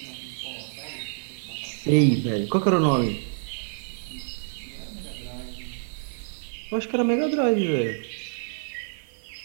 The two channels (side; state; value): left; silent; 60 dB below the other